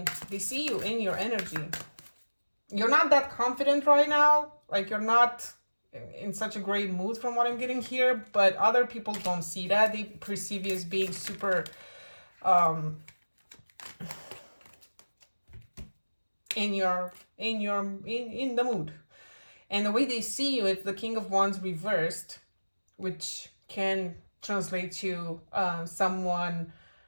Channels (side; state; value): both; inverted; correlation -1.00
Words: they see you in your energy. You're not that confident right now. Like, you're not in such a great mood from what I'm getting here, but other people don't see that. They perceive you as being super in the mood. And the way they see you, it's the King of Wands reversed, which can translate to someone,